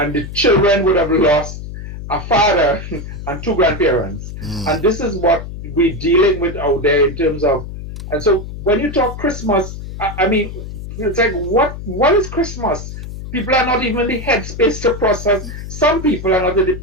the children would have lost a father and 2 grandparents. And this is what we're dealing with out there in terms of. And so when you talk Christmas, I mean, it's like, what is Christmas? People are not even in the headspace to process. Some people are not in the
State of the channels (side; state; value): left; noise; hum, 9 dB below the sound